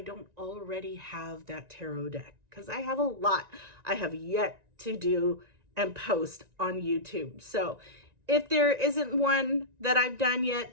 don't already have that tarot deck, because I have a lot I have yet to do and post on YouTube. So if there isn't one that I've done yet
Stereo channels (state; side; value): late; left; 1.9 ms